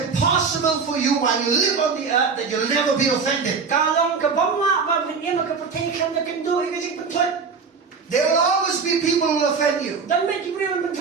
for you while you live on the earth that you'll never be offended. There will always be people who will offend you,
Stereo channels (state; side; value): quieter; left; 5.2 dB